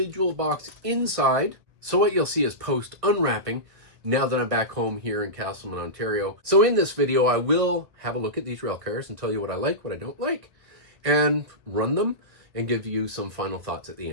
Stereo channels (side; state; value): left; late; 1.6 ms